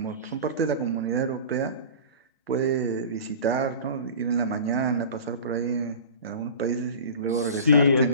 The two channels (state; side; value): inverted; both; correlation -0.36